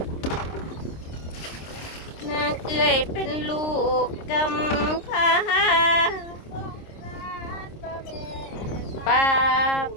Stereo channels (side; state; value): right; late; 26 ms